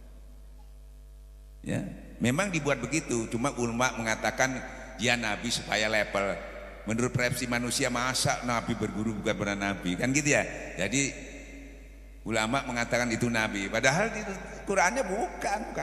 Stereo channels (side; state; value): both; identical; correlation 1.00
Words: Ya, memang dibuat begitu. Cuma ulama mengatakan dia nabi supaya level. Menurut persepsi manusia, masa nabi berguru bukan benar nabi, kan gitu ya. Jadi ulama mengatakan itu nabi, padahal di Qurannya bukan